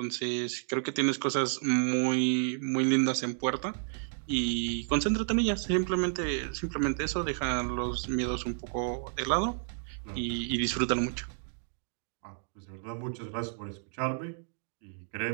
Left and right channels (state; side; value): silent; left; digital silence